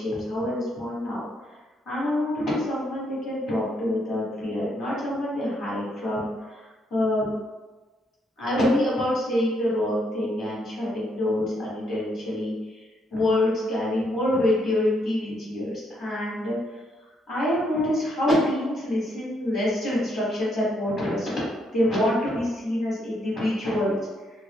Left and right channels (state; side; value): normal; both; correlation 0.74